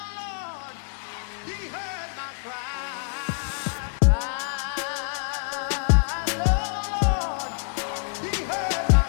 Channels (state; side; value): silent; right; 61 dB below the other